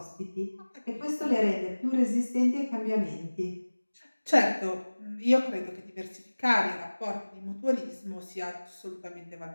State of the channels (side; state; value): both; inverted; correlation -1.00